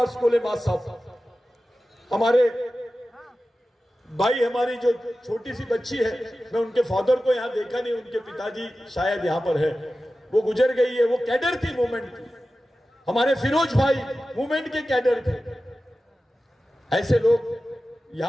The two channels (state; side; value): normal; both; correlation 0.94